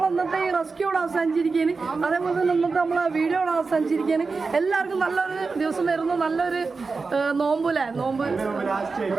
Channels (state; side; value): quieter; left; 4.4 dB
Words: ഇന്നത്തെ ഈ റെസ്ക്യൂ ഇവിടെ അവസാനിച്ചിരിക്കുകയാണ്. അതേപോലെ തന്നെ ഇന്നത്തെ നമ്മളെ വീഡിയോ ഇവിടെ അവസാനിച്ചിരിക്കുകയാണ്. എല്ലാവർക്കും നല്ലൊരു ദിവസം നേരുന്നു. നല്ലൊരു നോമ്പല്ലേ? നോമ്പ്